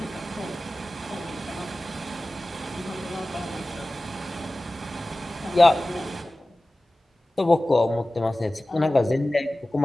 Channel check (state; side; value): normal; both; correlation 0.97